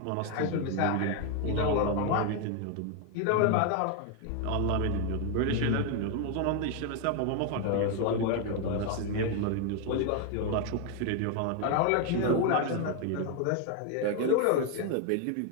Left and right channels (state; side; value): different; both; correlation 0.01